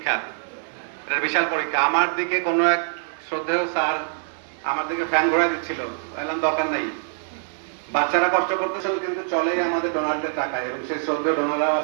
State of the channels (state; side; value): silent; left; digital silence